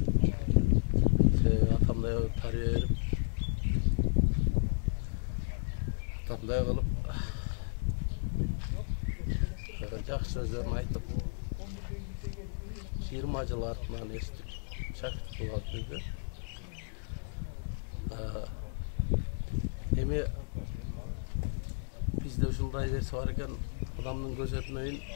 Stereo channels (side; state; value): right; silent; digital silence